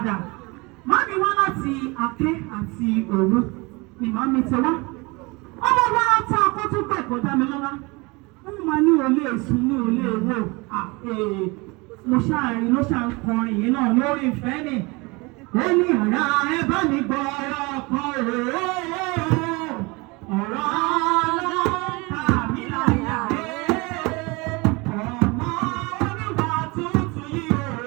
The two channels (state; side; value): quieter; left; 26.0 dB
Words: Màámi wá láti Aké àti Òru ni màámi ti wá. Ọmọ wa tá a kó tún pẹ̀ kó dá mi lọ́lá. Wọ́n máa ní olè èsùn ní olè èwò. Mo ṣáàrin ló ṣà ń kọrin yìí náà lórí ìfẹ́ ni. Ó ní ọ̀rá ẹ bá mi gbọ́ ọ̀rọ̀ kan ọ̀rọ̀ ọlọ́ta mi láyà ọmọ oníwà tuntun yìí o